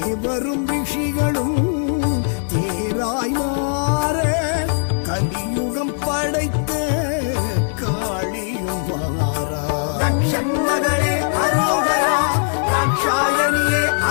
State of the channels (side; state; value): right; silent; digital silence